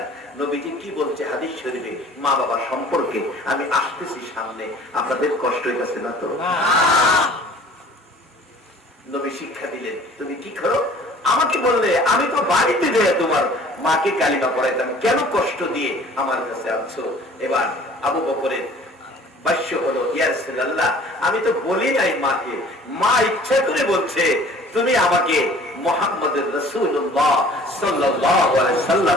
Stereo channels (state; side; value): normal; both; correlation 0.50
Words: নবীজি কি বলছে হাদিস শরীফে মা বাবা সম্পর্কে? আমি আসতেছি সামনে, আপনাদের কষ্ট হইতেছে না তো? নবী শিক্ষা দিলেন, তুমি কি করো? আমাকে বললে আমি তো বাড়িতে যাই তোমার মাকে কালিমা পড়াইতাম, কেন কষ্ট দিয়ে আমার কাছে আনছো? এবার আবু বকরের ভাষ্য হলো, ইয়া রাসূলুল্লাহ আমি তো বলি নাই মাকে, মা ইচ্ছা করে বলছে তুমি আমাকে মুহাম্মদুর রাসূলুল্লাহ সাল্লাল্লাহু আলাইহি